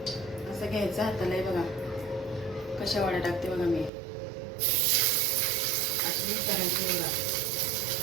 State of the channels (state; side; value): drops out; left; at 3.9 s